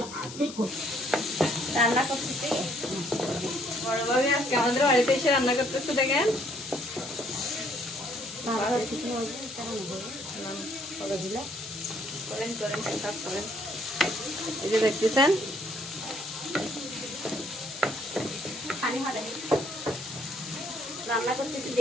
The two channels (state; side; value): noise; left; hiss, 12 dB below the sound